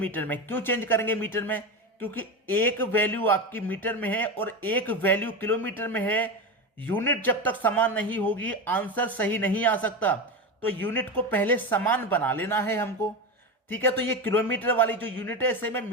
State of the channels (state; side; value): normal; both; correlation 0.20